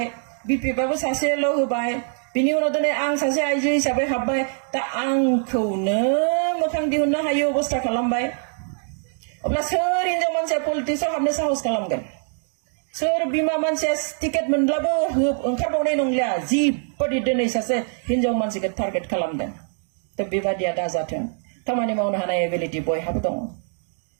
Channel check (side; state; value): left; silent; 57 dB below the other